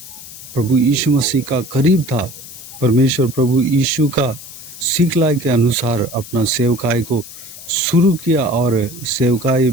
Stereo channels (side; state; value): left; noise; hiss, 15 dB below the sound